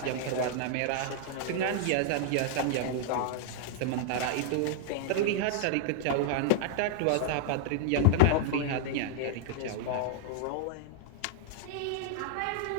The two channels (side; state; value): both; different; correlation -0.01